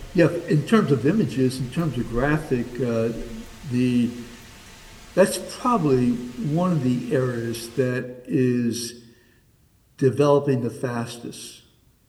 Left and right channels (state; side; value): identical; both; correlation 1.00